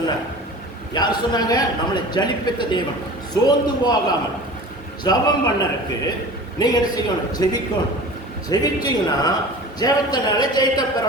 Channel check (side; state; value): both; normal; correlation 0.38